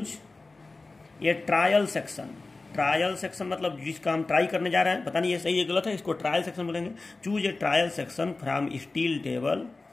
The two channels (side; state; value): right; quieter; 3.5 dB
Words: ये ट्रायल सेक्शन। ट्रायल सेक्शन मतलब जिसका हम ट्राई करने जा रहे हैं, पता नहीं ये सही है गलत है, इसको ट्रायल सेक्शन बोलेंगे। Choose a trial section from steel